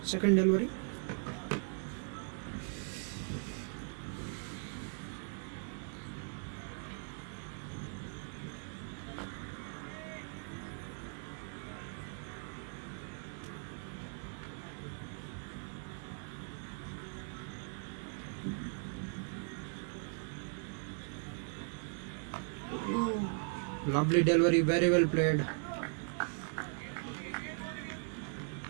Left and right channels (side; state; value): left; silent; 52 dB below the other